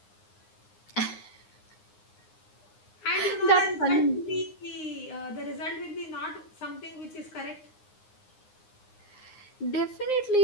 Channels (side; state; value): right; late; 9.7 ms